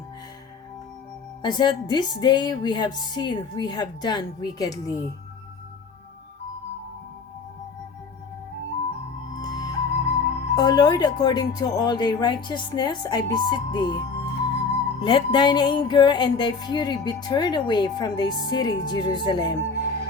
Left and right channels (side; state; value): right; quieter; 5.0 dB